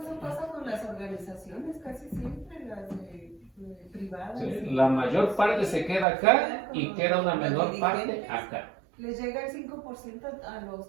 pasa con las organizaciones casi siempre, las privadas. Sí, la mayor parte se queda acá y queda una menor parte acá. Les llega el 5% a los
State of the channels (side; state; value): left; drops out; at 6.1 s